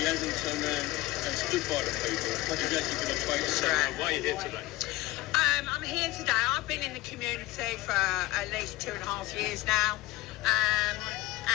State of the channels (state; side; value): quieter; right; 18.6 dB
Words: hasn't turned around and stood by the people. He's actually going to fight. So why are you here today? I'm here today. I've been in the community for at least 2.5 years now.